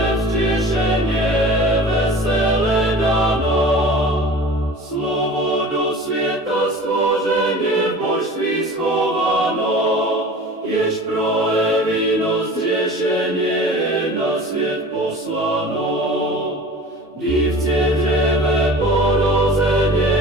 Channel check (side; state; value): both; normal; correlation 0.40